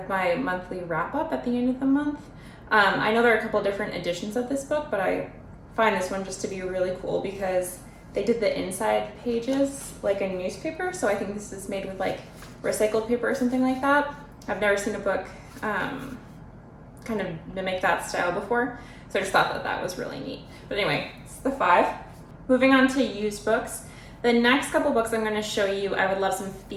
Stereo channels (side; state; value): both; identical; correlation 1.00